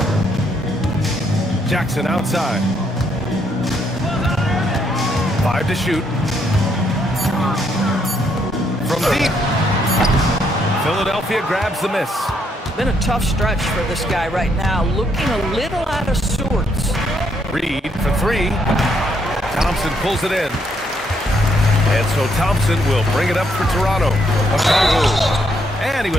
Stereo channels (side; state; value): both; normal; correlation 0.73